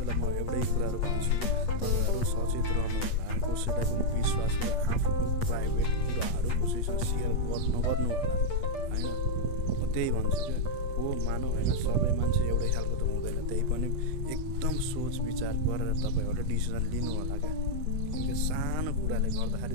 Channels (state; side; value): late; right; 8.4 ms